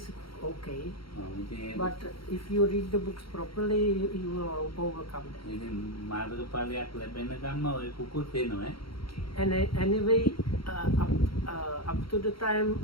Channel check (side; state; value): right; late; 0.74 ms